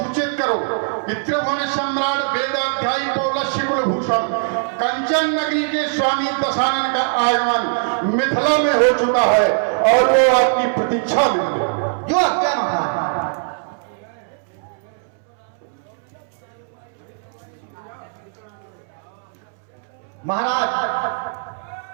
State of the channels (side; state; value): left; silent; 65 dB below the other